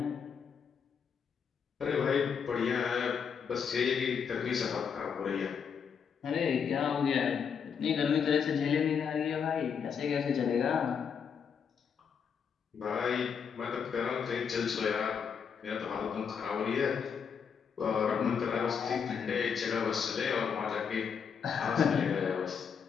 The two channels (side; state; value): right; quieter; 6.8 dB